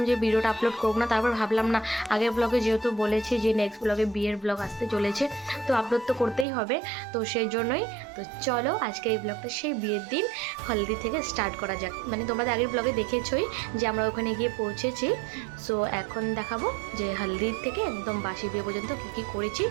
যে ভিডিওটা আপলোড করব না। তারপর ভাবলাম না, আগের ব্লগে যেহেতু বলেছি যে নেক্সট ব্লগে বিয়ের ব্লগ আসতে চলেছে, তো আপলোড তো করতেই হবে। তো সেই জন্যই তো চলো আজকে এই ব্লগটা সেই বিয়ের দিন হলদি থেকে স্টার্ট করা যাক। মানে তোমরা আগের ব্লগে দেখেছই যে আমরা ওখানে গিয়ে পৌঁছেছি। সো এখন দেখাবো যে হলদির থেকে একদম বাসি বিয়ে পর্যন্ত কী কী করেছি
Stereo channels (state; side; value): drops out; left; at 6.5 s